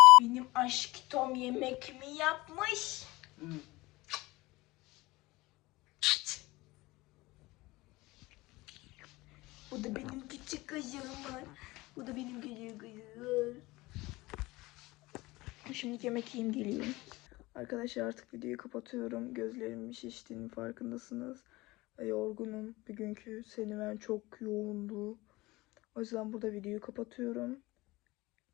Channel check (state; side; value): quieter; right; 20.8 dB